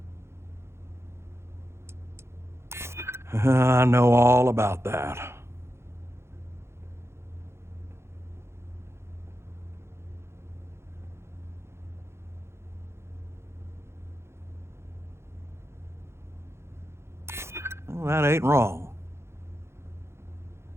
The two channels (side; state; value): left; late; 0.13 ms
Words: I know all about that. Well, that ain't wrong.